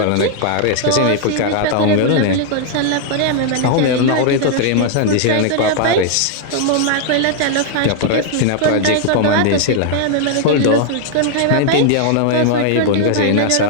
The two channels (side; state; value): both; different; correlation 0.00